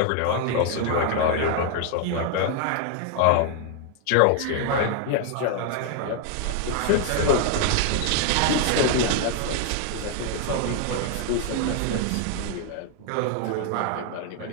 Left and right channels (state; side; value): different; both; correlation 0.00